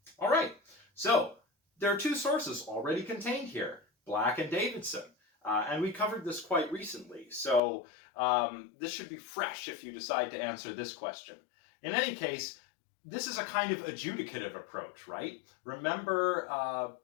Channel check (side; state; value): right; drops out; at 7.6 s